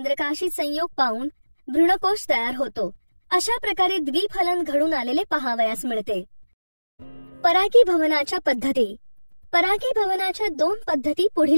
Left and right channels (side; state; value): both; inverted; correlation -1.00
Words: संयोग पावून भ्रूणकोश तयार होतो. अशा प्रकारे द्विफलन घडून आलेले पाहावयास मिळते. परागीभवनाच्या पद्धती. परागीभवनाच्या 2 पद्धती